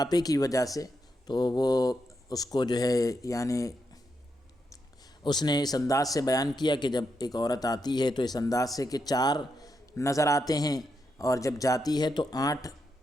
کی وجہ سے، تو وہ اس کو جو ہے یعنی اس نے اس انداز سے بیان کیا کہ جب ایک عورت آتی ہے تو اس انداز سے کہ 4 نظر آتے ہیں اور جب جاتی ہے تو 8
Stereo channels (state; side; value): normal; both; correlation 0.83